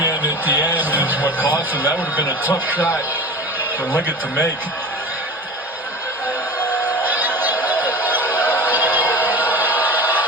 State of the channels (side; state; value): both; normal; correlation 0.34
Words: at the end is what cost him. That would have been a tough shot for Leggett to make.